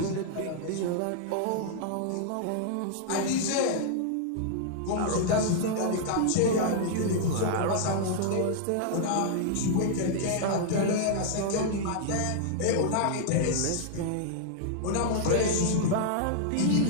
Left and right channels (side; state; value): both; different; correlation -0.01